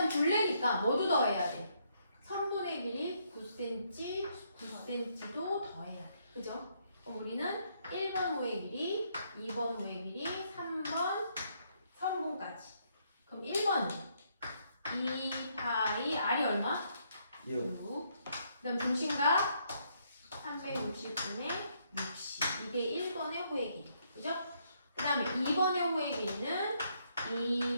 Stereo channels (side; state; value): both; inverted; correlation -0.73